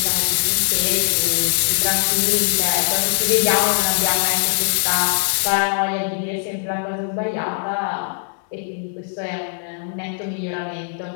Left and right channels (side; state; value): right; silent; 66 dB below the other